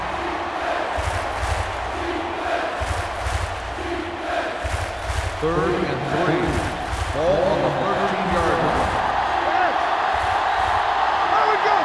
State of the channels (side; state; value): both; identical; correlation 1.00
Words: Third and 3. Ball on the 13-yard line. There we go,